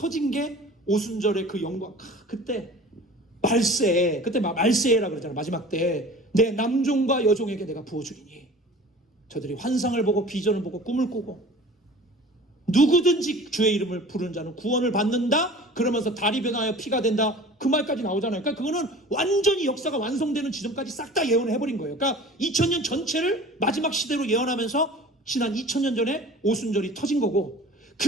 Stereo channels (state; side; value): normal; both; correlation 0.42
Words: 게 오순절의 그 영광. 그때 말세, 그때 말세라고 그러잖아요. 마지막 때 내 남종과 여종에게 내가 부어주리니 저들이 환상을 보고 비전을 보고 꿈을 꾸고 누구든지 주의 이름을 부르는 자는 구원을 받는다. 그러면서 달이 변하여 피가 된다. 그 말까지 나오잖아요. 그러니까 그거는 완전히 역사가 완성되는 지점까지 싹 다 예언을 해버린 거예요. 그러니까 2000년 전체를 마지막 시대로 예언하면서 지난 2000년 전에 오순절이 터진 거고,